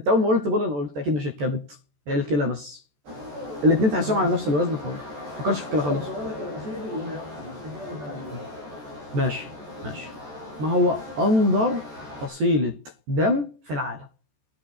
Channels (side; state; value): left; late; 14 ms